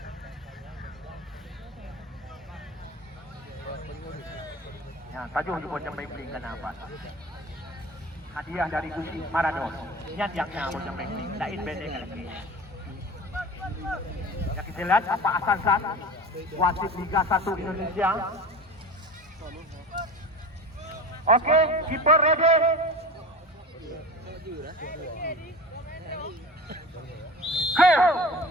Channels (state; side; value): normal; both; correlation 0.35